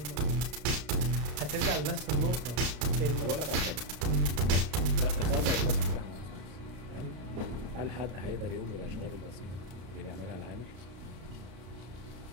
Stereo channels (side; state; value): left; late; 33 ms